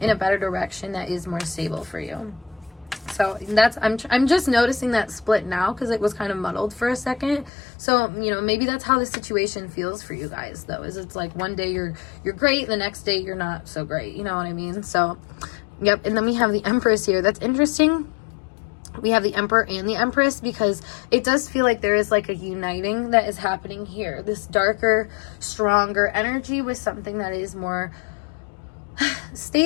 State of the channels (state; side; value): drops out; right; at 7.5 s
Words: a better direction that is more stable for you. So that's, I'm just noticing that split now because it was kind of muddled for a second. So, maybe that's how the situation feels for you guys, though, is it's like one day you're great, the next day you're not so great. You know what I mean? So, yep. And then we have the Empress here. That's interesting. We have the Emperor and the Empress because it does feel like there is like a uniting that is happening here. This darker, stronger energy with something that is more